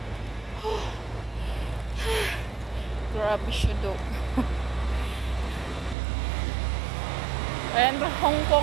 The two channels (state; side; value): drops out; left; at 6.0 s